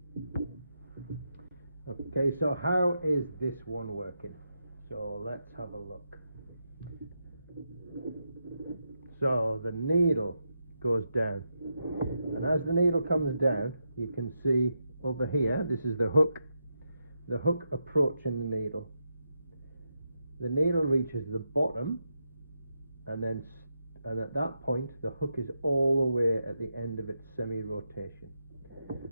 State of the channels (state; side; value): inverted; both; correlation -0.84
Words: Okay, so how is this one working? So let's have a look. So the needle goes down, and as the needle comes down, you can see over here, this is the hook approaching the needle. The needle reaches the bottom, and at that point the hook is all the way at the end of its semi-rotation.